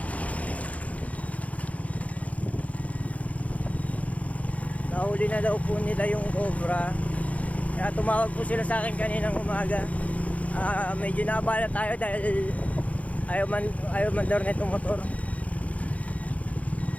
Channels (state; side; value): late; right; 0.067 ms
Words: Nahuli na daw po nila yung cobra. Kaya tumawag po sila sa akin kaninang umaga. Medyo naabala tayo dahil ayaw man daw na itong motor.